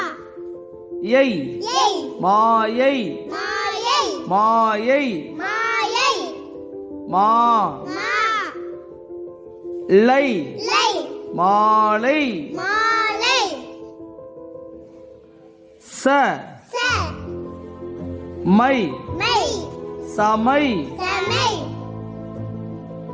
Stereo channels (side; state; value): both; identical; correlation 1.00